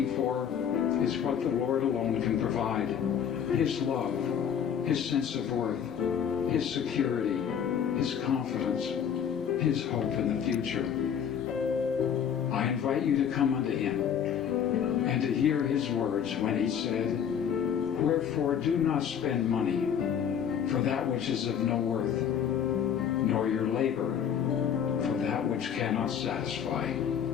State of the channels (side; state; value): right; quieter; 8.3 dB